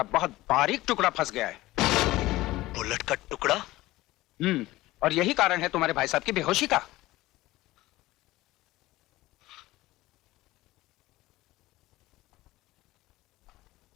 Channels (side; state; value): right; quieter; 17.9 dB